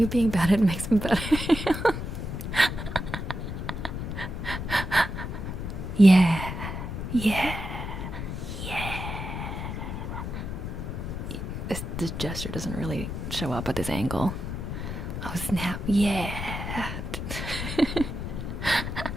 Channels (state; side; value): noise; left; rumble, 5 dB below the sound